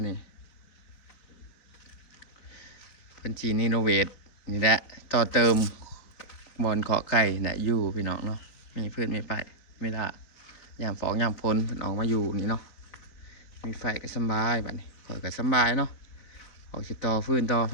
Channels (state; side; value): late; right; 4.4 ms